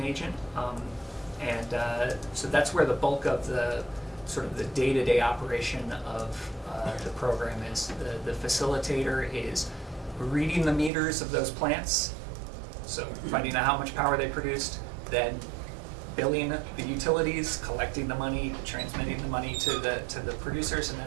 agent, so that's where the bulk of the sort of the day-to-day operation of the program is. The facilitator is reading the meters of those plants, so finding out how much power they produced, then billing the utilities, collecting the money, transmitting the money to the producers, and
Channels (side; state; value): left; drops out; at 10.9 s